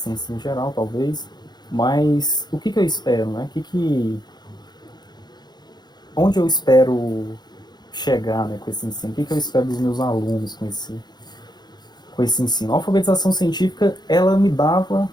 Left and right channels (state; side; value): late; right; 0.20 ms